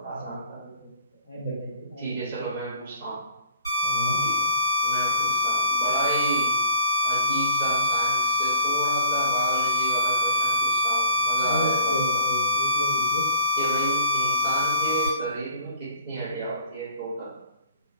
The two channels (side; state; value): both; inverted; correlation -0.49